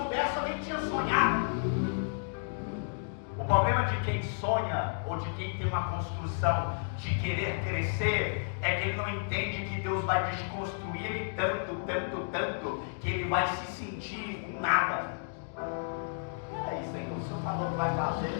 eu nem tinha sonhado. O problema de quem sonha, ou de quem tem uma construção de querer crescer, é que ele não entende que Deus vai desconstruir ele tanto, que ele vai se sentir um nada. Peraí, Senhor, o Senhor falou que vai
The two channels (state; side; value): silent; right; digital silence